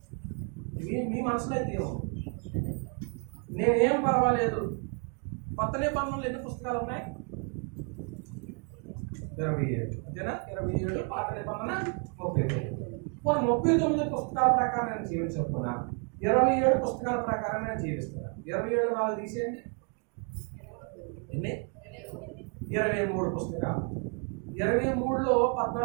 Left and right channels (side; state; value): left; quieter; 38.8 dB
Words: మీ మనసులో అయితే ఏమో నేనేం పర్వాలేదు. కొత్త నిబంధనలు ఎన్ని పుస్తకాలు ఉన్నాయి? 27. అంతేనా? 27. పాత నిబంధన 39. 39 పుస్తకాల ప్రకారం నేను జీవించకపోయినా 27 పుస్తకాల ప్రకారం నేను జీవిస్తున్నాను. 27 4 తీసేయండి. ఎన్ని? 23 పుస్తకాలు. 23లో